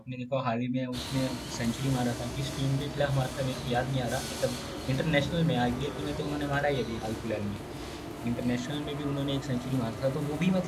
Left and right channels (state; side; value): identical; both; correlation 1.00